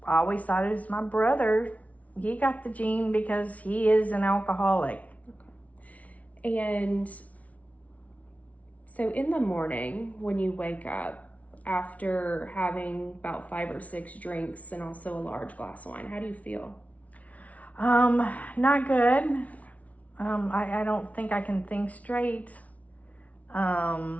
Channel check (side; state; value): right; late; 0.068 ms